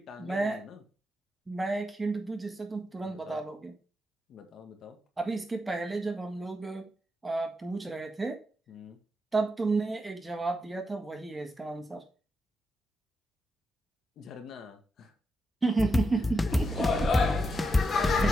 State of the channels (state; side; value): normal; both; correlation 0.85